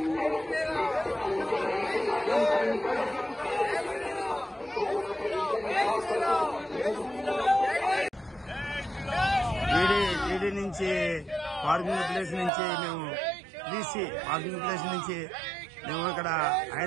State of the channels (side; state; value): left; drops out; at 12.5 s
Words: ఈడీ నుంచి పార్కింగ్ ప్లేస్ నుంచి మేము బీసీ పార్కింగ్ ప్లేస్ నుంచి మేము ఇక్కడ